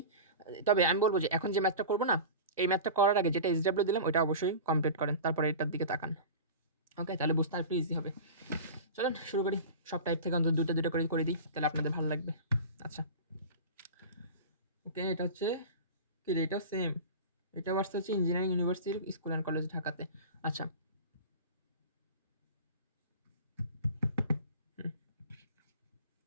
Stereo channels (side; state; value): both; inverted; correlation -0.32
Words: তবে আমি বলবো যে এখন যে ম্যাথটা করবো না, এই ম্যাথটা করার আগে যেটা SW দিলাম ওইটা অবশ্যই কমপ্লিট করেন, তারপরে এটার দিকে তাকান, ওকে, তাহলে বুঝতে আর একটু ইজি হবে। চলেন শুরু করি, সব টাইপ থেকে অন্তত দুটো করে দিই, তাহলে আপনাদের ভালো লাগবে। আচ্ছা ওকে, এটা হচ্ছে কি রে, এটাও সেম, এটা আসতে হচ্ছে engineering university school and college ঢাকাতে। আচ্ছা